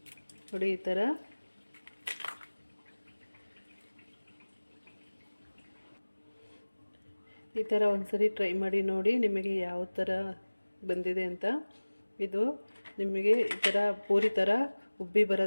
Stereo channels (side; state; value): both; inverted; correlation -1.00